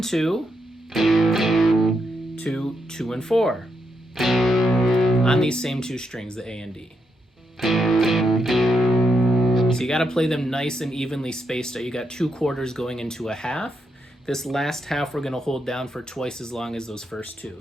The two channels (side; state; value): both; normal; correlation 0.81